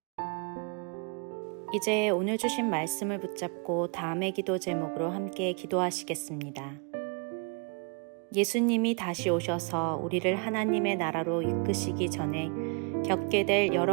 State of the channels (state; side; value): quieter; left; 37.4 dB